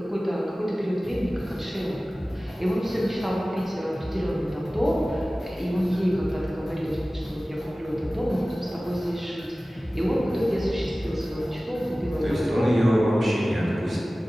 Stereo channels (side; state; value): both; normal; correlation 0.97